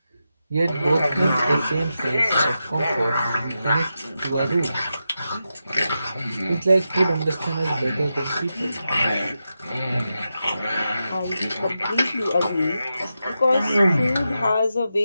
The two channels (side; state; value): both; inverted; correlation -0.89